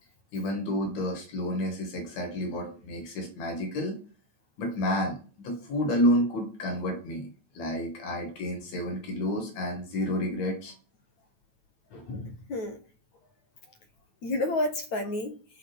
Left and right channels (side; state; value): right; late; 9.1 ms